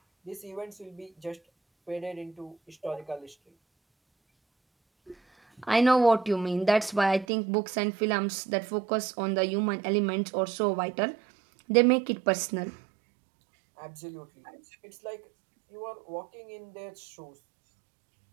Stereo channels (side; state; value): left; drops out; at 7.2 s